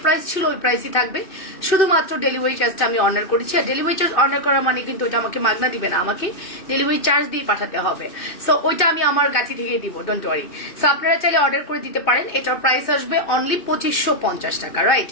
প্রাইস ছিল ওই প্রাইসই থাকবে, শুধুমাত্র ডেলিভারি চার্জটা আমি অনার করেছি। আর ডেলিভারি চার্জ অনার করা মানে কিন্তু ওটা আমাকে মাগনা দিবে না, আমাকে ডেলিভারি চার্জ দিয়ে পাঠাতে হবে। সো ওইটা আমি আমার গাছি থেকে দিব, ডোন্ট ওয়ারি। সো আপনারা চাইলে অর্ডার করে দিতে পারেন। এটার প্রাইস আসবে অনলি 2550 টাকা, রাইট?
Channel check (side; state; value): right; late; 2.6 ms